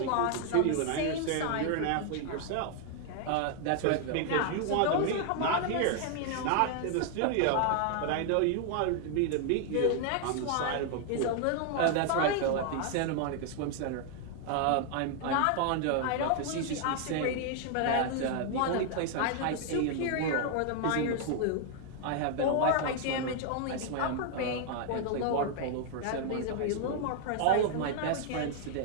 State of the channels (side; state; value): both; different; correlation 0.00